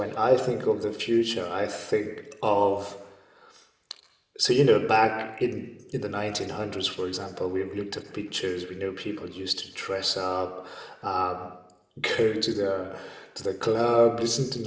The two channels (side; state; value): both; identical; correlation 1.00